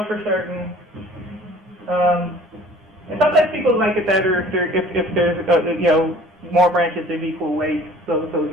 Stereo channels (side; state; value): both; normal; correlation 0.50